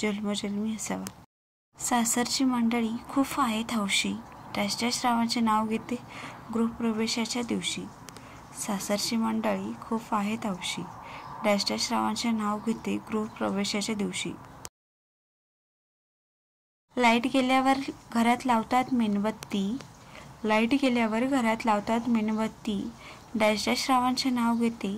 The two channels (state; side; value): identical; both; correlation 1.00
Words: असावा. सासरची मंडळी खूप आहेत हौशी. डॅश डॅश रावांचे नाव घेते गृहप्रवेशाच्या दिवशी. सासरची मंडळी खूप आहेत हौशी. डॅश डॅश रावांचे नाव घेते गृहप्रवेशाच्या दिवशी. लाईट गेल्यावर घरात लावतात मेणबत्ती. लाईट गेल्यावर घरात लावतात मेणबत्ती. डॅश डॅश रावांचे नाव घेते